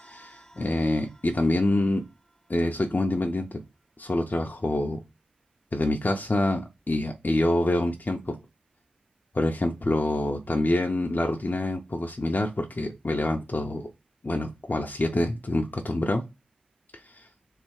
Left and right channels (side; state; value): both; normal; correlation 0.93